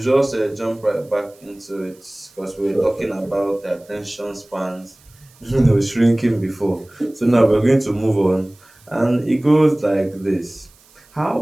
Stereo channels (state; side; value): noise; right; hiss, 29 dB below the sound